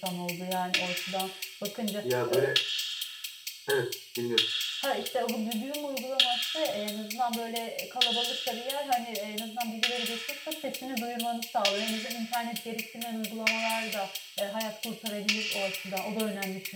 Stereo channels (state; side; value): identical; both; correlation 1.00